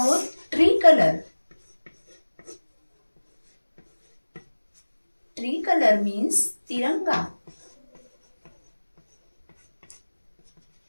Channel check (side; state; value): both; inverted; correlation -1.00